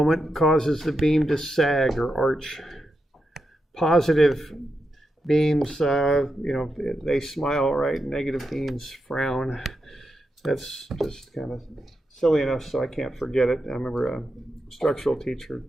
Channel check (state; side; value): normal; both; correlation 0.86